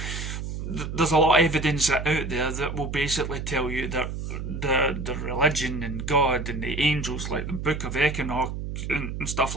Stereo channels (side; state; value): right; noise; hum, 5 dB below the sound